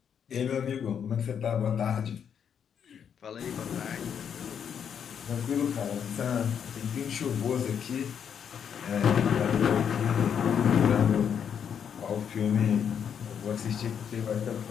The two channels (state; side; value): quieter; right; 7.9 dB